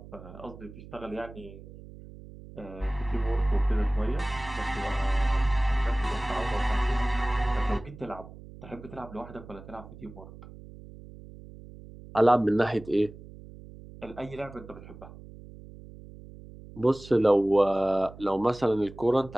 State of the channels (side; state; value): right; noise; hum, 17 dB below the sound